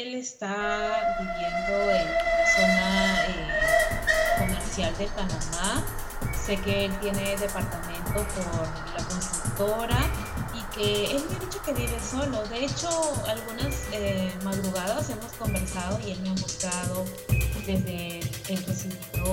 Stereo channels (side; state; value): both; identical; correlation 1.00